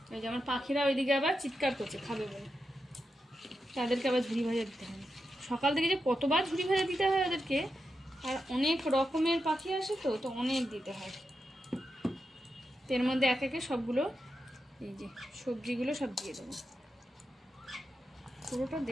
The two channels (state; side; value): normal; both; correlation 0.88